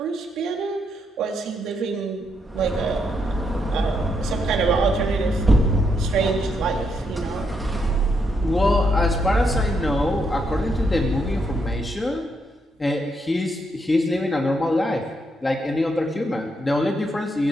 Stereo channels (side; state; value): both; normal; correlation 0.78